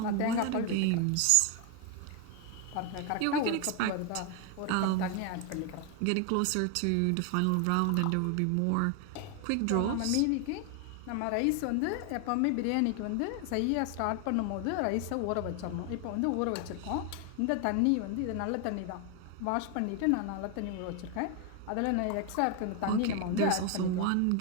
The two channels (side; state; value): both; different; correlation 0.01